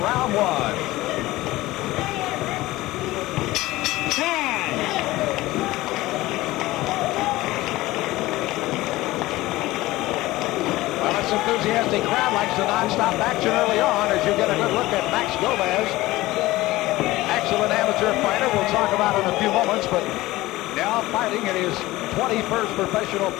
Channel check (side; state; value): right; quieter; 18.3 dB